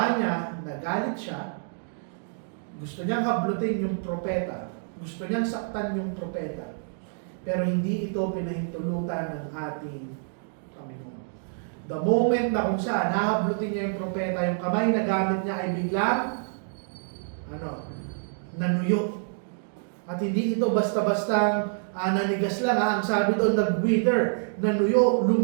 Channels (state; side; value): silent; left; digital silence